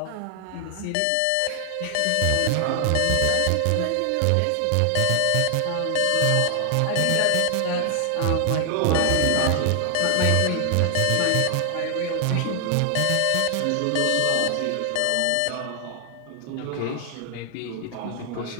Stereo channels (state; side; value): different; both; correlation 0.00